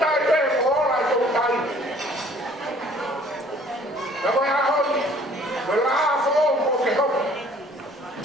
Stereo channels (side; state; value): both; normal; correlation 0.55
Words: koe ko ola e tau tai. Na koe ahoni, koe la aamu o ke hopa.